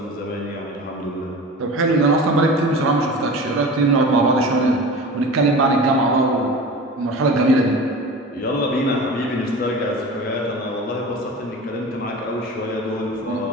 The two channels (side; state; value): both; normal; correlation 0.34